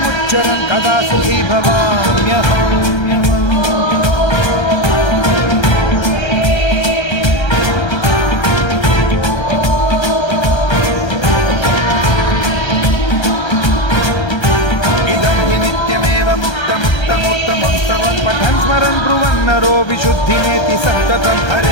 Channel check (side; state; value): right; late; 1.3 ms